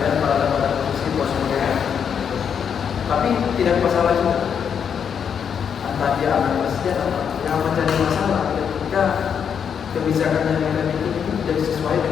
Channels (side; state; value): right; quieter; 7.5 dB